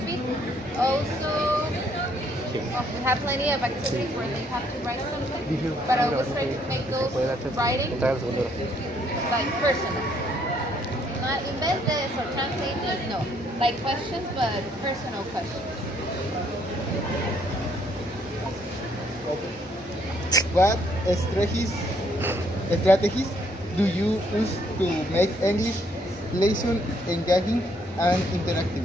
speak. Also, we have plenty of activities where they have to write something, but I always try to make those writing like personal. Not invent this or translate this, no. Like questions, but personal questions. What strategies do you use to make English lesson engaging and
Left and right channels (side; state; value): both; normal; correlation 0.68